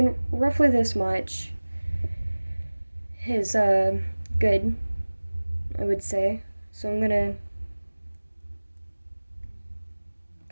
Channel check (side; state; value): both; inverted; correlation -1.00